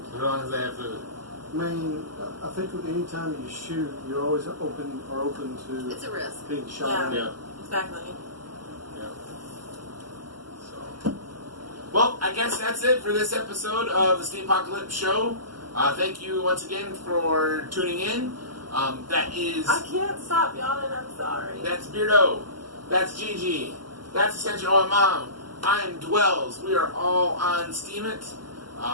As long as they have food. I mean, I think with any time you shoot, you're always open to It's a risk. being shot at. Yeah. Exactly. Yeah. So, well, I guess that's it for this episode of the Steem-Pocalypse show. Thank you once again for tuning in. That is. I can't stop yawning. I'm sorry. That's Beardo. That's Gigi. That's Essential Oil Mom. I am Dwells. We are all on Steam It.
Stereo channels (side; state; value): left; late; 0.71 ms